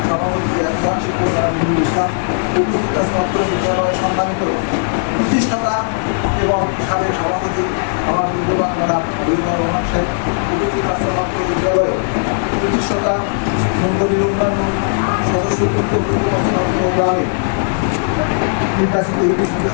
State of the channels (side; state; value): right; silent; digital silence